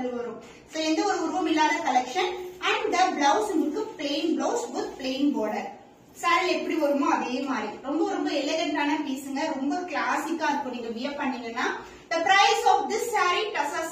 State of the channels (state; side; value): identical; both; correlation 1.00